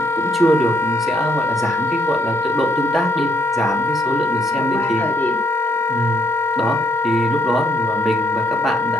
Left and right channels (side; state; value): both; normal; correlation 0.70